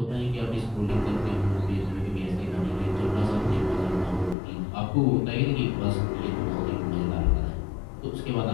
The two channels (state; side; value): drops out; right; at 4.4 s